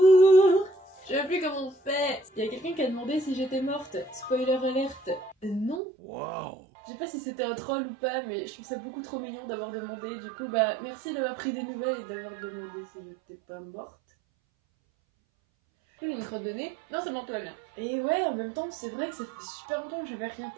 Je sais plus comment on fait. Il y a quelqu'un qui a demandé si j'étais morte. Spoiler alerte. Non. Wow. Je sais pas si c'était un troll ou pas, mais je trouve ça beaucoup trop mignon d'avoir demandé. Du coup, bah merci d'avoir pris des nouvelles et d'avoir demandé si j'étais pas morte. J'ai une crotte de nez. Non, c'est bon, tout va bien. Et ouais, en même temps, c'est vrai que ça fait super longtemps que j'avais rien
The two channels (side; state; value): left; drops out; at 5.8 s